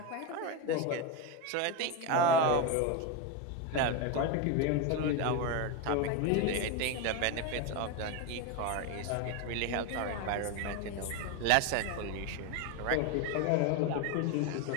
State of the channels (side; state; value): both; different; correlation 0.03